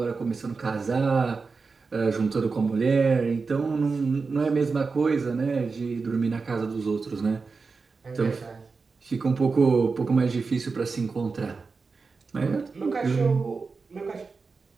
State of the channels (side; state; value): left; quieter; 4.5 dB